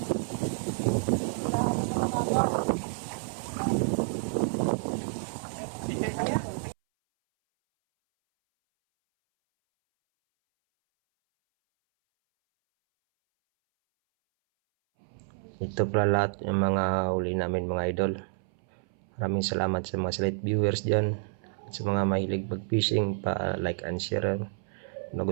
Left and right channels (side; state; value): left; silent; 58 dB below the other